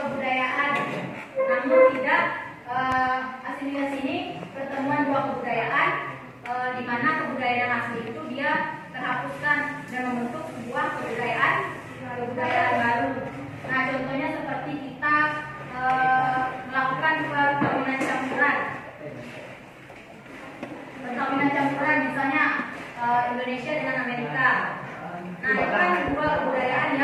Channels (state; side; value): identical; both; correlation 1.00